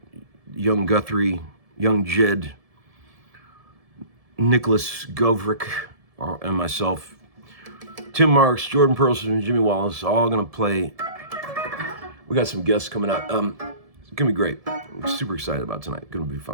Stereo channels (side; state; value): left; late; 1.7 ms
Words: Young Guthrie, Young Jed, Nicholas Govrick, and myself, Tim Marks, Jordan Perlson, and Jimmy Wallace, all gonna play. We got some guests coming out. It's gonna be great. I'm super excited about tonight. Gonna be